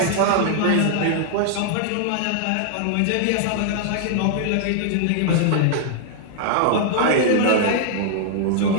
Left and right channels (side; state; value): both; different; correlation -0.01